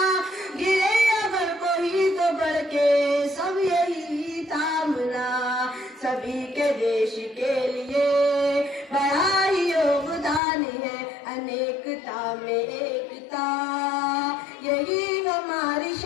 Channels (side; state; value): right; drops out; at 10.4 s